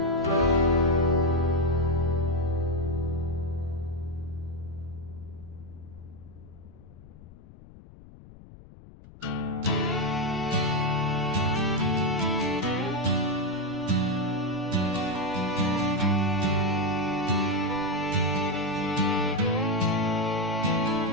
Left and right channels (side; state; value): left; noise; rumble, 20 dB below the sound